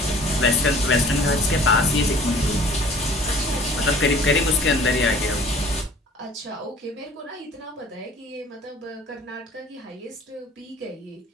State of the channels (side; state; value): both; normal; correlation 0.50